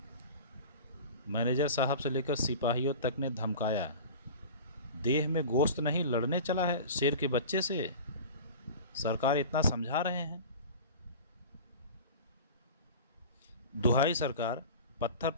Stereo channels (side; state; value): both; inverted; correlation -0.36